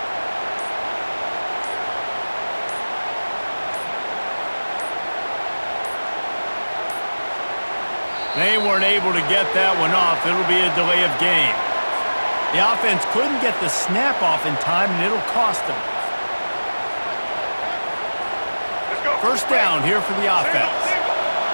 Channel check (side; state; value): both; inverted; correlation -1.00